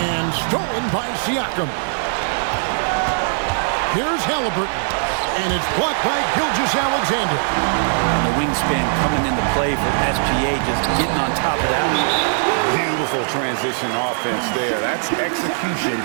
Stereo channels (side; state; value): left; silent; 59 dB below the other